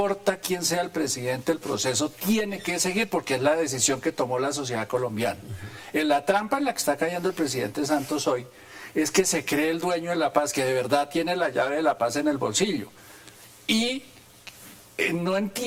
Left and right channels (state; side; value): identical; both; correlation 1.00